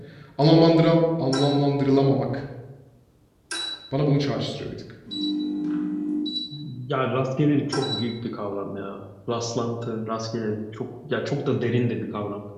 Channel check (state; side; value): identical; both; correlation 1.00